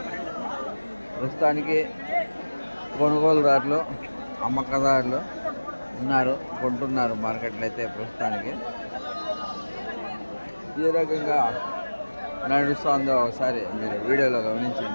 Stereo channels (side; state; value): both; inverted; correlation -1.00